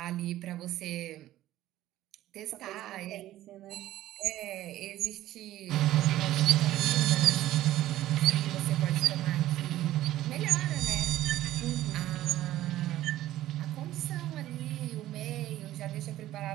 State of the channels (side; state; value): left; quieter; 14.4 dB